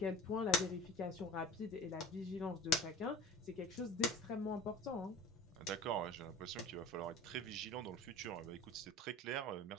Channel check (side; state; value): both; normal; correlation 0.39